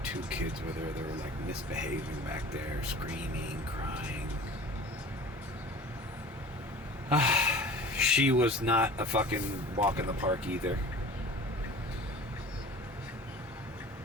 2 kids with her. They were like misbehaving back there, screaming, crying. She was not a fucking walk in the park either.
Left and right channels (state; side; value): normal; both; correlation 0.42